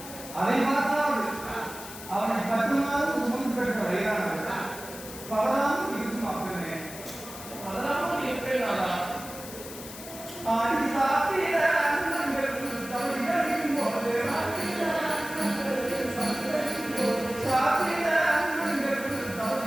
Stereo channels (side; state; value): left; noise; hiss, 13 dB below the sound